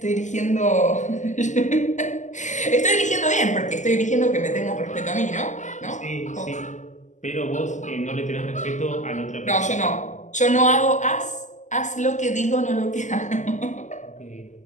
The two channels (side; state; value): right; late; 0.35 ms